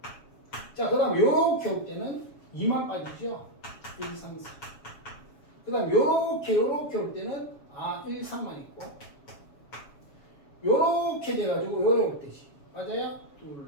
자, 그 다음 요렇게 올 때는 2만 빠지죠? 1, 2, 3, 4. 그 다음 요렇게 올 때는 1, 3만 있고 요렇게 돼가지고 요래 올 때지. 맞아요? 둘,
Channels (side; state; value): right; late; 7.2 ms